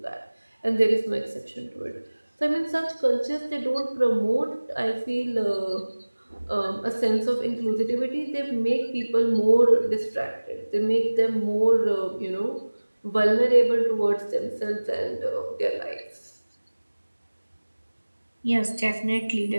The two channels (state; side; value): inverted; both; correlation -1.00